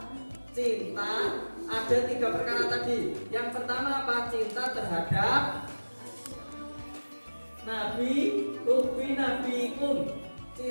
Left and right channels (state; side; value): inverted; both; correlation -1.00